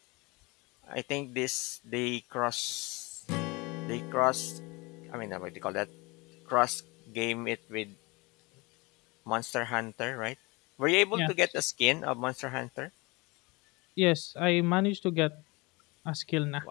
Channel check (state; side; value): quieter; right; 25.3 dB